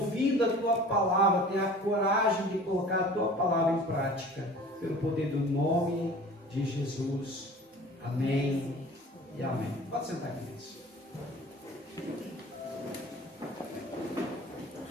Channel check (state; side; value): normal; both; correlation 0.43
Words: a Tua palavra, ter a coragem de colocar a Tua palavra em prática, pelo poder do nome de Jesus. Amém e amém. Pode sentar, queridos.